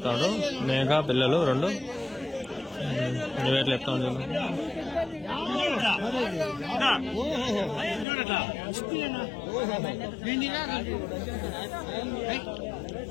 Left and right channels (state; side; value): drops out; right; at 8.1 s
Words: ఉండు. మేఘా పిల్లలు 2 ఎట్లా చెప్తా ఉండు.